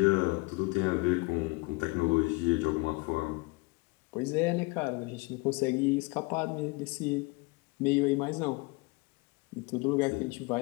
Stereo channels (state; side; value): quieter; right; 26.3 dB